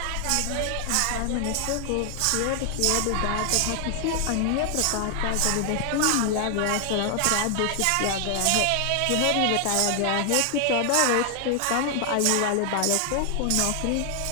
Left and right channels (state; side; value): different; both; correlation 0.00